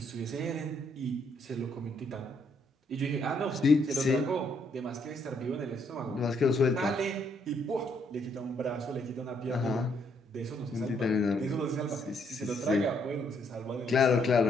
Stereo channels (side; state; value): both; normal; correlation 0.72